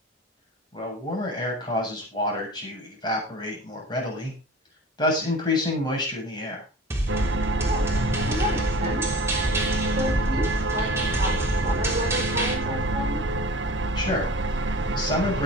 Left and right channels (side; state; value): both; normal; correlation 0.39